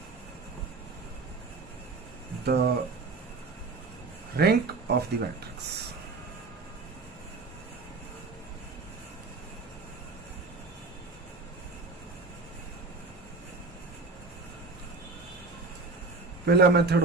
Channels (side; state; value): left; quieter; 3.8 dB